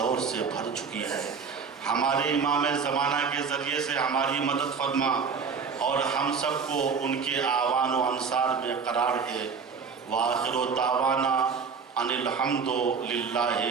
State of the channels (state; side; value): quieter; left; 5.7 dB